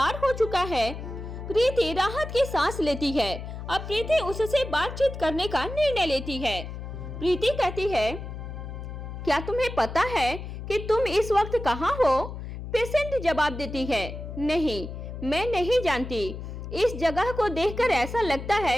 हो चुका है, प्रीति राहत की सांस लेती है। अब प्रीति उससे बातचीत करने का निर्णय लेती है। प्रीति कहती है, क्या तुम्हें पता है कि तुम इस वक्त कहाँ हो? पेशेंट जवाब देती है, नहीं, मैं नहीं जानती। इस जगह को देखकर ऐसा लगता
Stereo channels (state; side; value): noise; left; hum, 9 dB below the sound